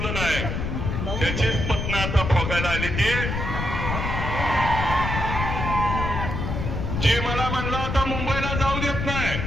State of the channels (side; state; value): left; noise; rumble, 3 dB below the sound